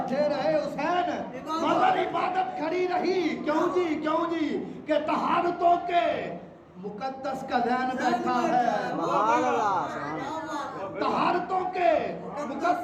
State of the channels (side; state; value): both; identical; correlation 1.00